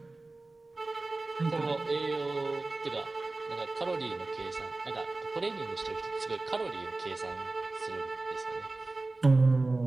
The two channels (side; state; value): left; quieter; 3.2 dB